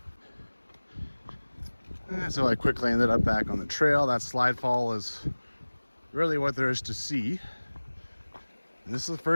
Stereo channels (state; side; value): inverted; both; correlation -1.00